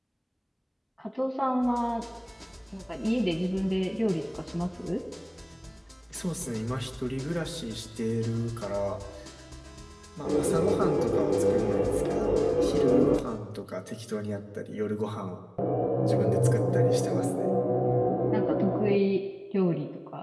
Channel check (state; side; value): identical; both; correlation 1.00